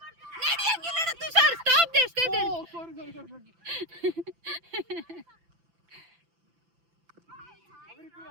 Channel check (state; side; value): late; left; 5.9 ms